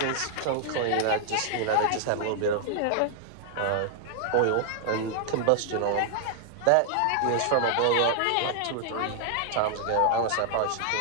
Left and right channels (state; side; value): different; both; correlation 0.00